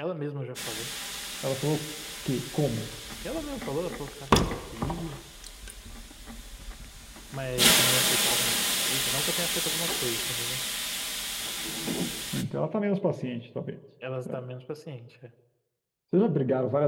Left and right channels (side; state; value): both; identical; correlation 1.00